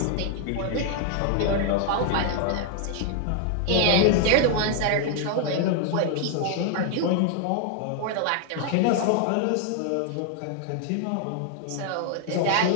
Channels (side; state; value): both; different; correlation 0.00